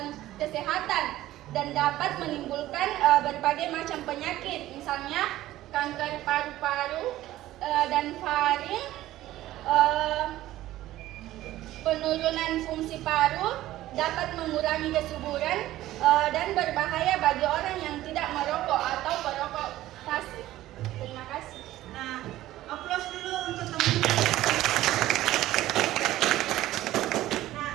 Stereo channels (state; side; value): quieter; left; 15.0 dB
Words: dan dapat menimbulkan berbagai macam penyakit, misalnya kanker paru-paru dan faring, penurunan fungsi paru, dapat mengurangi kesuburan, dan berbahaya bagi orang yang tidak merokok atau perokok pasif. Terima kasih. Nah, aplaus dulu untuk teman-teman. Nah,